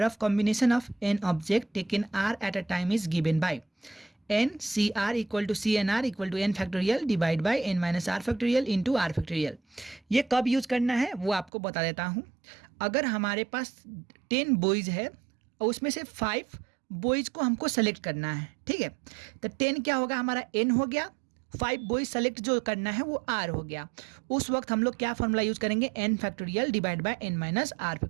of combination of n object taken r at a time is given by n C r equal to C n r equal to n factorial divide by n minus r factorial into r factorial. ये कब use करना है वो आपको बता देता हूँ। अगर हमारे पास 10 बॉयज़ है और उसमें से 5 बॉयज़ को हमको सेलेक्ट करना है, ठीक है। तो 10 क्या होगा, हमारा एन हो गया, 5 बॉयज़ सेलेक्ट जो करना है वो आर हो गया। उस वक्त हम लोग क्या फॉर्मूला यूज़ करेंगे, n factorial divide by n minus r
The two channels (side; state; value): left; drops out; at 11.5 s